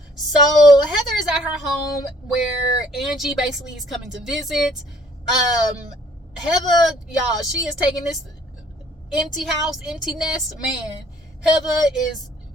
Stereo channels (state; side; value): normal; both; correlation 0.59